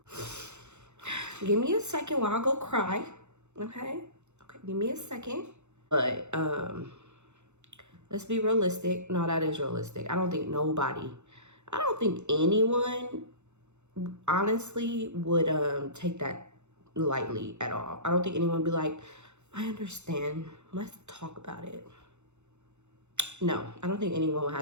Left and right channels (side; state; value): left; late; 0.83 ms